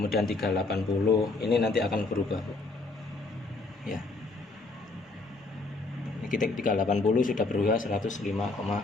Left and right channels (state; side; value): quieter; right; 3.5 dB